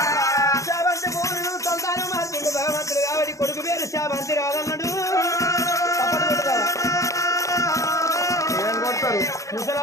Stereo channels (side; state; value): right; late; 0.15 ms